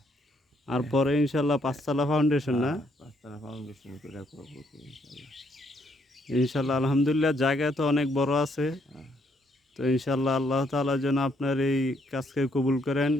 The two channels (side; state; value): both; normal; correlation 0.71